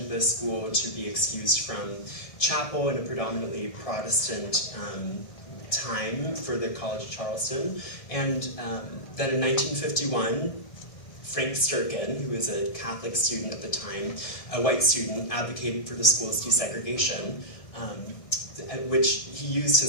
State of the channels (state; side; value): late; right; 1.6 ms